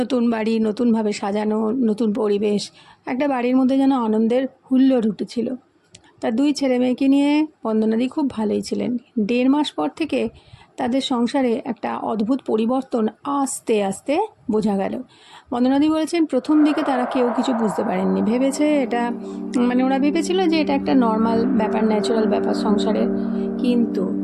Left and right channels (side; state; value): both; identical; correlation 1.00